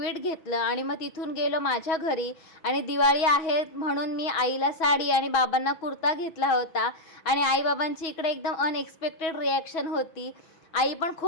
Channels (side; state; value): right; late; 6.1 ms